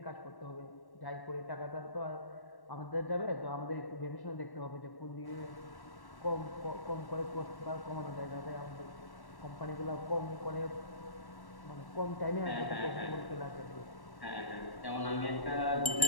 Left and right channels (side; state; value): right; late; 1.1 ms